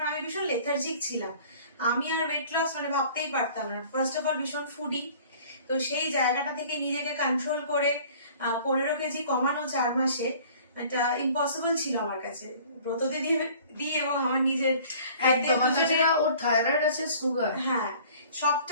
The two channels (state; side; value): inverted; both; correlation -0.50